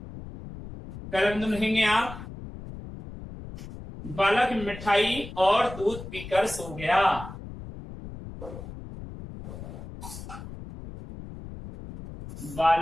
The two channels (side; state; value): left; noise; rumble, 12 dB below the sound